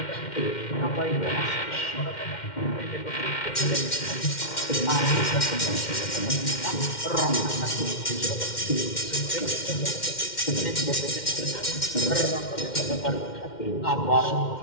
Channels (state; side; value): late; right; 2.1 ms